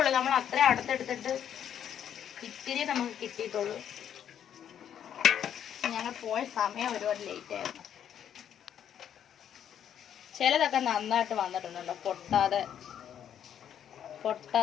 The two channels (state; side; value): quieter; right; 9.4 dB